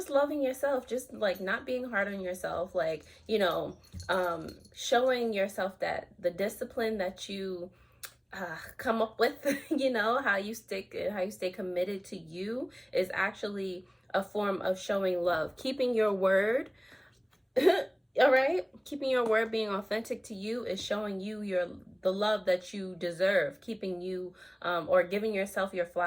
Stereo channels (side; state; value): both; identical; correlation 1.00